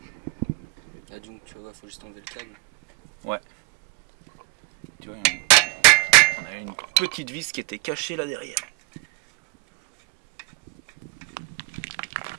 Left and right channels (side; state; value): left; quieter; 29.8 dB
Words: Là donc tu vois, faut juste enlever le câble. Ouais. Tu vois, on a une petite vis qui était cachée là derrière.